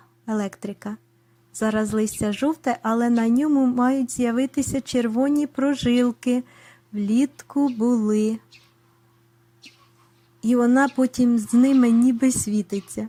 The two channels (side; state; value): both; identical; correlation 1.00